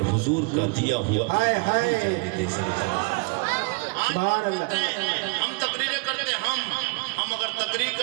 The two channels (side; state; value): left; quieter; 29.5 dB